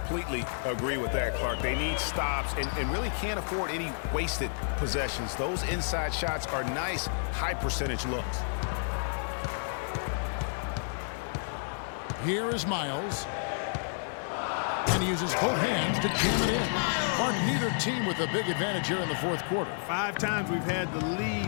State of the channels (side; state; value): right; silent; 57 dB below the other